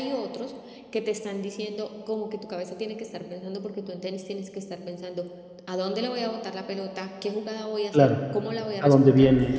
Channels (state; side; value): identical; both; correlation 1.00